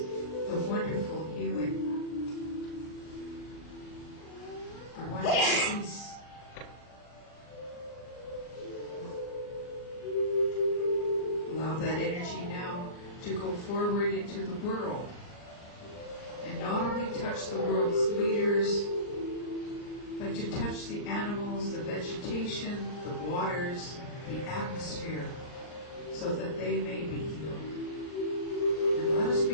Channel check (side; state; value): right; late; 39 ms